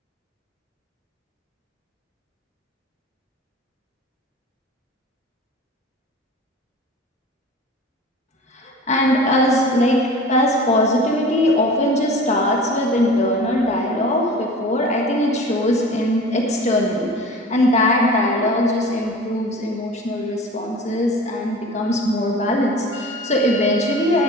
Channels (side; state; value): both; normal; correlation 0.39